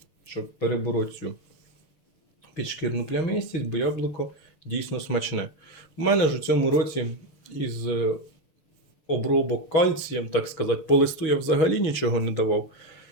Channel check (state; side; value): late; right; 6.7 ms